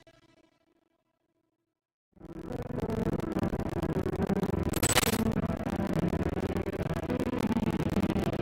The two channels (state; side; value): identical; both; correlation 1.00